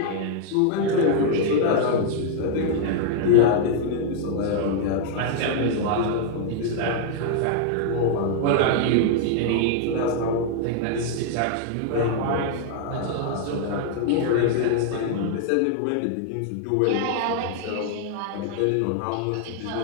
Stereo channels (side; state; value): both; different; correlation 0.00